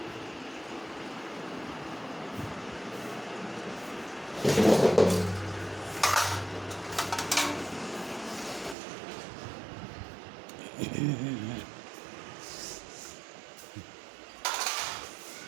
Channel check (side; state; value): left; drops out; at 8.8 s